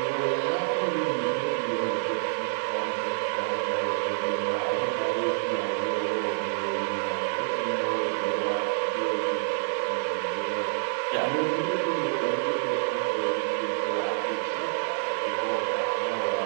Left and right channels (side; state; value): left; silent; digital silence